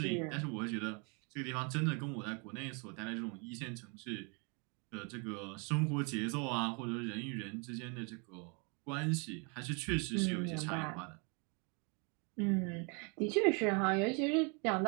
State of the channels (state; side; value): quieter; left; 34.2 dB